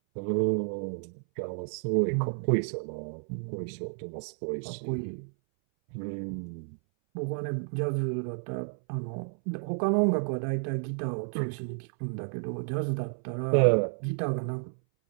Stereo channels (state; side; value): silent; left; 57 dB below the other